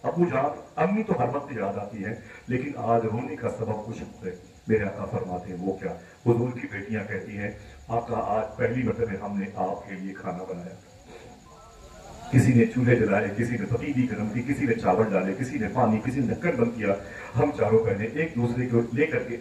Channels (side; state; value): both; identical; correlation 1.00